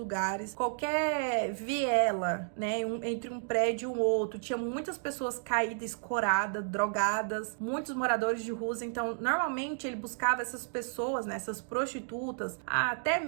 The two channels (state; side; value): silent; left; digital silence